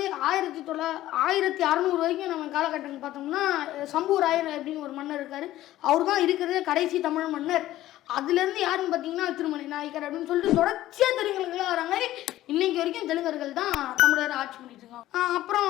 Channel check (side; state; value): right; quieter; 14.6 dB